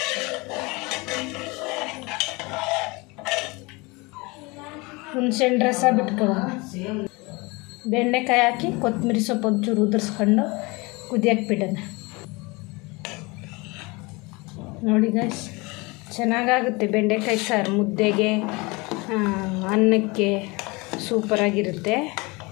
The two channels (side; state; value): right; quieter; 25.6 dB